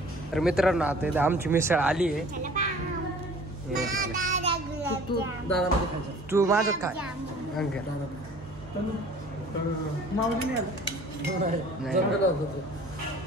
तर मित्रांनो, आता आमची मिसळ आली आहे. तू माझ्यात काय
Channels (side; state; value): both; normal; correlation 0.49